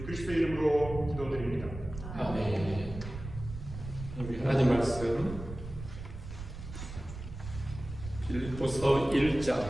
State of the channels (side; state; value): right; noise; rumble, 10 dB below the sound